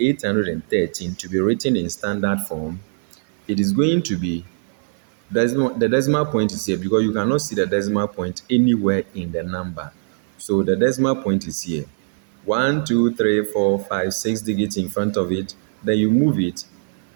to be written in standard form, it is going to be, the decimal point is here because you cannot see the decimal point anywhere in the number. So the decimal point is here. 1, 2, 3, 4, 5, 6 digits in front of it. Then you move it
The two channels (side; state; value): left; silent; 58 dB below the other